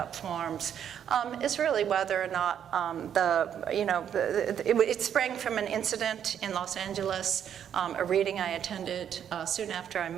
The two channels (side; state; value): left; quieter; 9.1 dB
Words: forms, is really whether or not it sprang from an incident in Los Angeles, a reading I attended soon after I